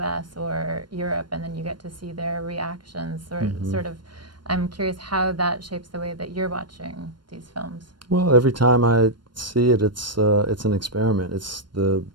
or Europe, and then you get to see their reactions, sort of, I'm curious how that shapes the way that you're watching these films. Well, every time I see it, it's an experiment. It's the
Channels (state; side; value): late; left; 0.72 ms